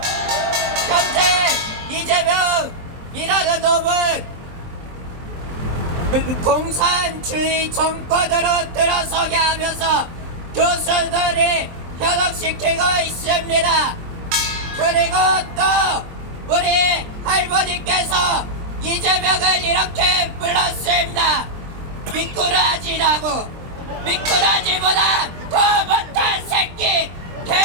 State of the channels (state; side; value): late; left; 23 ms